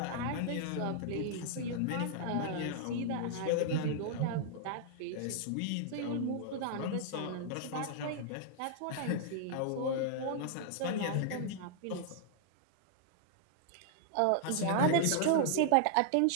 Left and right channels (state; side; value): different; both; correlation -0.01